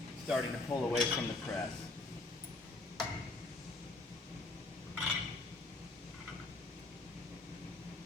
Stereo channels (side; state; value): right; quieter; 3.1 dB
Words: starting to pull away from the press.